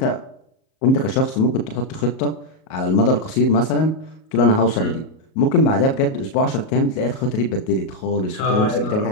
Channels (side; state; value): right; late; 38 ms